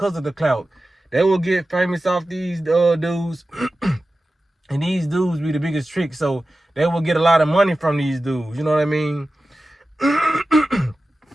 of the clout. They will get famous off these dudes. And these dudes be the biggest trick, so they will get a lot of money from these dudes. You know what I mean?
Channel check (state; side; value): normal; both; correlation 0.94